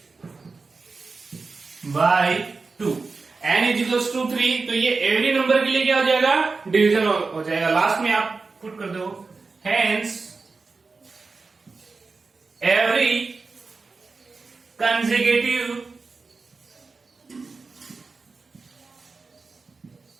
n is equals to 3, तो ये every number के लिए क्या हो जाएगा? डिवीजन हो जाएगा। लास्ट में आप पुट कर दो, hence every consecutive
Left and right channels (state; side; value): quieter; left; 4.2 dB